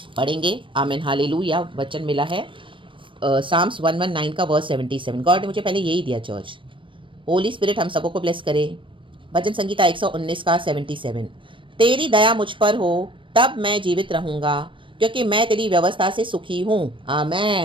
पढ़ेंगे. आमीन, हालेलुया. वचन मिला है साम्स 119 का वर्स 77. गॉड ने मुझे पहले यही दिया चर्च. होली स्पिरिट हम सबको ब्लेस करे. भजन संगीता 119 का 77. तेरी दया मुझ पर हो तब मैं जीवित रहूँगा, क्योंकि मैं तेरी व्यवस्था से सुखी हूँ.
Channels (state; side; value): late; left; 0.25 ms